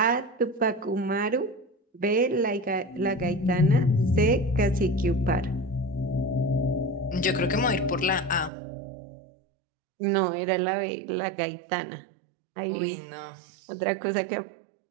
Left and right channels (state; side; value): drops out; left; at 8.5 s